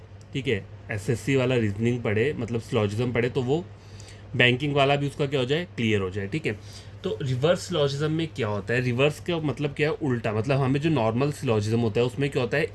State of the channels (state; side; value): identical; both; correlation 1.00